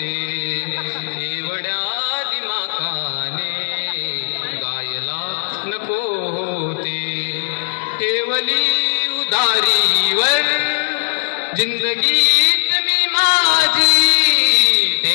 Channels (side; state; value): right; silent; 62 dB below the other